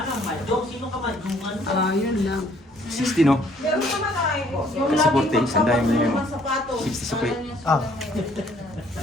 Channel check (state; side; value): normal; both; correlation 0.62